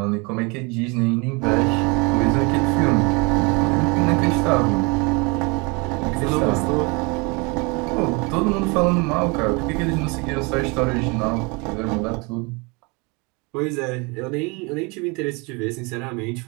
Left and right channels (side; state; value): left; quieter; 29.2 dB